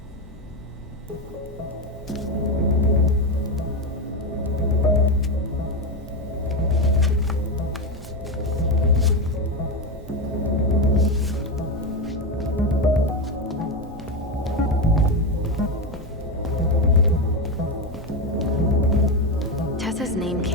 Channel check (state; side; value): normal; both; correlation 0.13